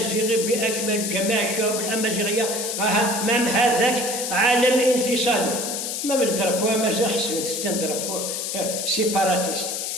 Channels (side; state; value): left; noise; hiss, 3 dB below the sound